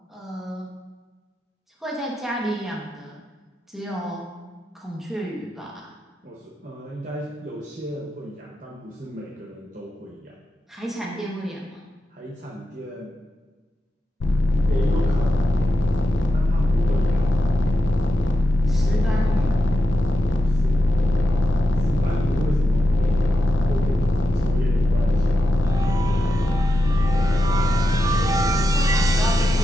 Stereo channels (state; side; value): normal; both; correlation 0.89